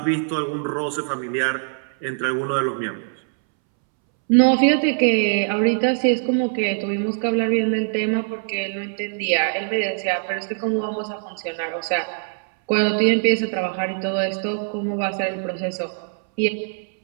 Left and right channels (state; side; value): silent; left; 64 dB below the other